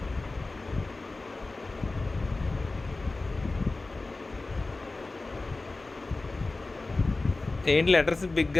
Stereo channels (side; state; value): right; quieter; 3.3 dB